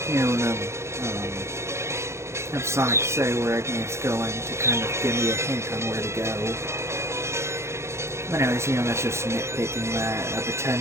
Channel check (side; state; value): left; late; 0.13 ms